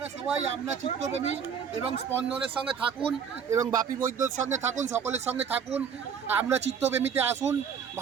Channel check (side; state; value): left; quieter; 7.0 dB